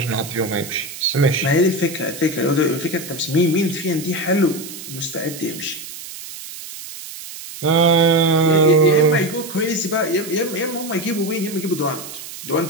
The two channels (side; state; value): right; noise; hiss, 12 dB below the sound